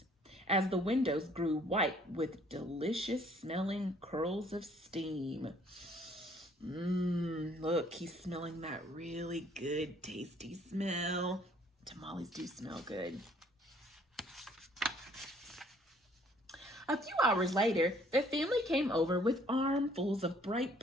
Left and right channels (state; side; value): normal; both; correlation 0.61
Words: as the windows grew white with delicious smelling curls of steam. Look, he's smelling that really good, tasty smell. Tamales do smell good. A few hours later, the family came over with armfuls of bright